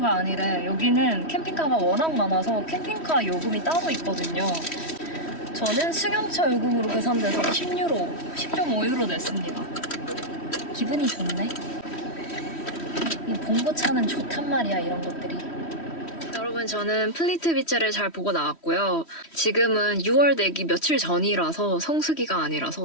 아니래. 여기는 캠핑카가 워낙 많아서 캠핑카 요금이 따로 있거든요. 저는 승용차 요금으로 계산돼서 10유로, 10.5유로 냈습니다. 기분이 좋네. 이 봉고차는 좋단 말이야, 이런 것들이. 여러분, 저는 플리트 비치를 잘 보고 나왔고요. 지금은 6월 되기 며칠 전이라서 성수기가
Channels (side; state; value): right; late; 3.1 ms